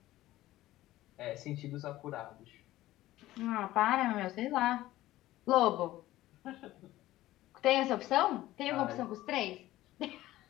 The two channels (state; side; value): quieter; right; 15.8 dB